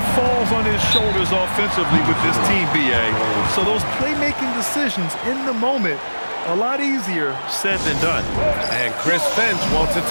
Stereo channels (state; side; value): inverted; both; correlation -1.00